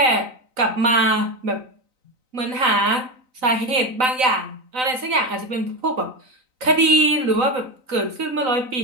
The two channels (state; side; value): late; left; 3.9 ms